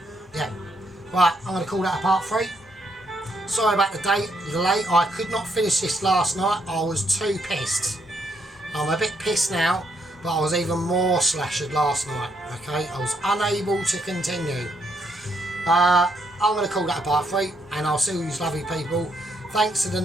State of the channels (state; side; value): normal; both; correlation 0.75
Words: Yeah, right, I'm going to call that a part 3. Sorry about the delay. I could not finish this last night. I was too pissed. I'm a bit pissed now, but I was even more slashed last night, okay? I was unable to continue. I'm going to call that a part 3, and I'll see you lovely people. Thanks to the